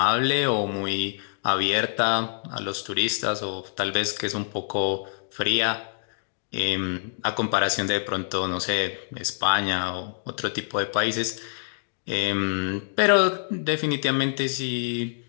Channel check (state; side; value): silent; right; digital silence